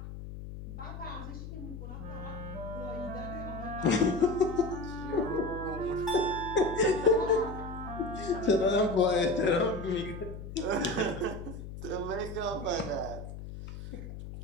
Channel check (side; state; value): left; noise; hum, 10 dB below the sound